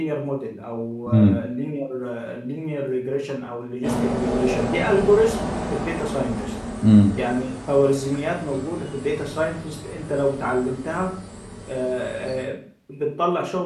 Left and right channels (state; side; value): identical; both; correlation 1.00